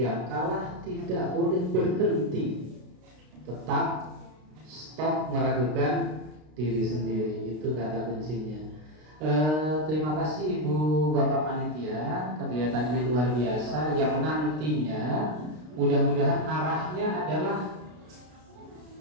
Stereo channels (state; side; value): late; left; 33 ms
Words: kalah tidak boleh berhenti. Tetap stop meragukan diri sendiri. Itu kata kuncinya. Terima kasih Ibu Bapak Panitia. Kegiatan ini luar biasa, yang nantinya mudah-mudahan arahnya adalah